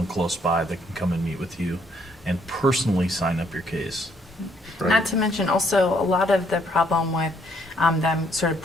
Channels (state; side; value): normal; both; correlation 0.68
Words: close by that can come and meet with you and personally sign up your case. Right. Not to mention also a lot of the problem with them sort of